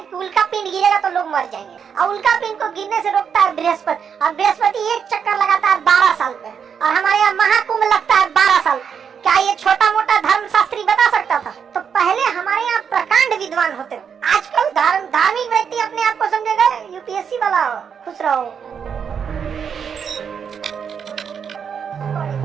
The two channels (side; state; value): left; quieter; 7.1 dB